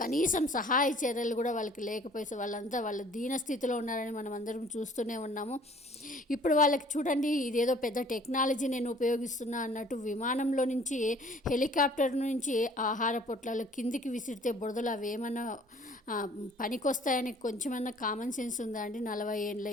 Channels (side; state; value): both; normal; correlation 0.54